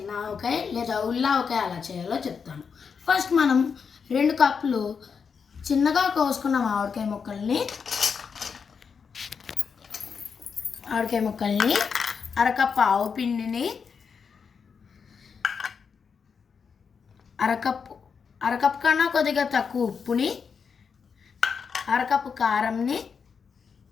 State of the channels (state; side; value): quieter; right; 6.1 dB